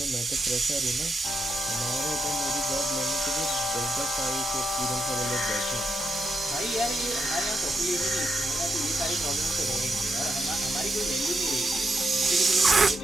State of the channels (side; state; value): both; normal; correlation 0.82